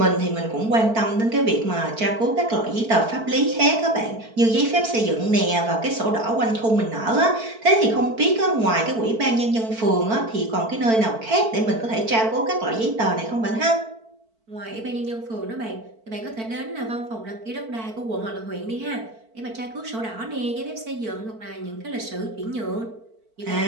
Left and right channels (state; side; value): late; left; 4.5 ms